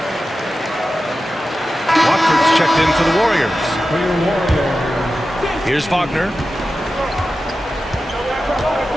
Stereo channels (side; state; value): both; normal; correlation 0.93